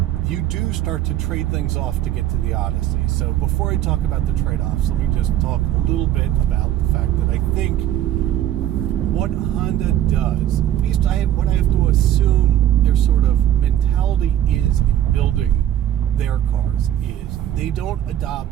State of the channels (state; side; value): quieter; left; 12.0 dB